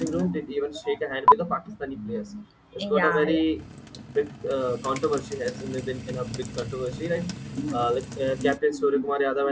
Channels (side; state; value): both; identical; correlation 1.00